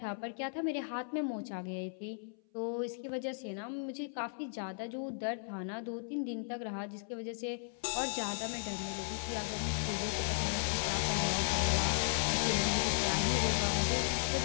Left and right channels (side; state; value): right; silent; 54 dB below the other